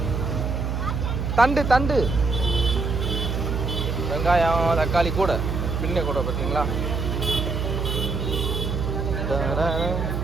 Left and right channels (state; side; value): noise; right; hum, 1 dB below the sound